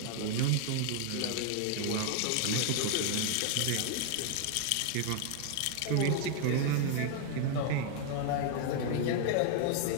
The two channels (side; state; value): both; different; correlation 0.00